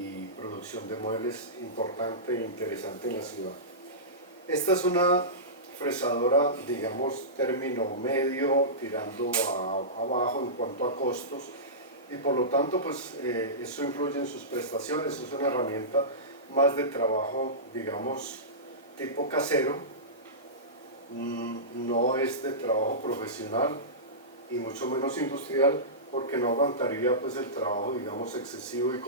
producción de muebles importante e interesante en la ciudad. Esta es una fresadora, digamos, término medio, tirando abajo en cuanto a costos, y por lo tanto pues eso influye en sus prestaciones. Es una herramienta más de trabajo, digamos, tipo casero, no es de trabajo profesional y mucho menos industrial, porque no aguantaría pues el trabajo, digamos, excesivo y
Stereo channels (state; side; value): normal; both; correlation -0.20